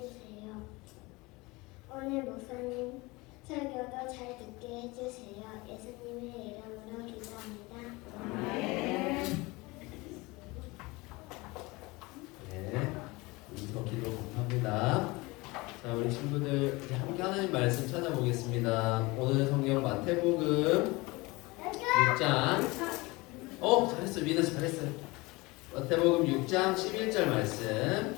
오늘 목사님 설교도 잘 듣게 해주세요. 예수님의 이름으로 기도합니다. 네, 우리도 기도 감사합니다. 자, 우리 친구들 이제 함께 하나님 말씀 찾아보겠습니다. 오늘 성경 마태복음 6장. 잘했어, 민아 잘했어요. 마태복음 6장 11절 말씀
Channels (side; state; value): right; quieter; 23.5 dB